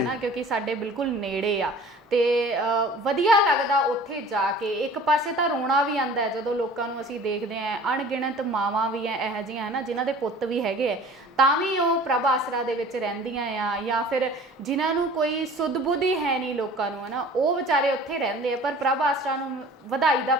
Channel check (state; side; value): normal; both; correlation 0.45